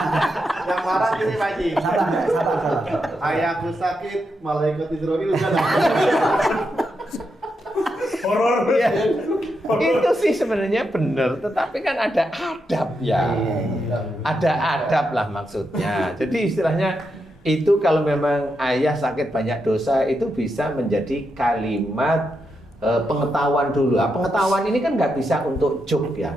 Yang marah ini Pak Haji. Sabar. Ayahku sakit, malaikat Israil udah Horor. Iya. Itu sih sebenarnya benar, tetapi kan ada adab ya. Ada adab lah maksudnya. Jadi istilahnya itu kalau memang ayah sakit banyak dosa itu bisa menjadi kalimat pengetahuan dulu. Pengetahuan ini kan nggak bisa untuk joke ya.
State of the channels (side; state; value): both; normal; correlation 0.84